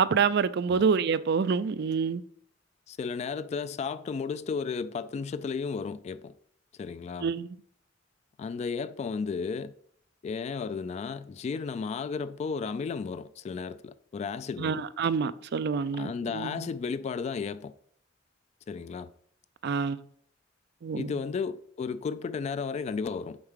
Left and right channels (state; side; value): normal; both; correlation 0.19